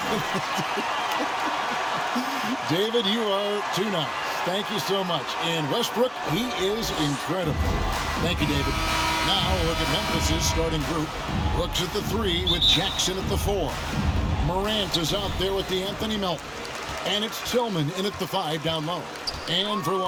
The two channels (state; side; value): identical; both; correlation 1.00